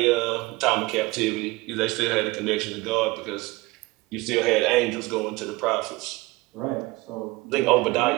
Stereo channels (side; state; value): left; quieter; 21.7 dB